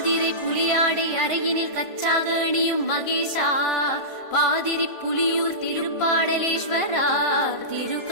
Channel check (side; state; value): right; late; 1.5 ms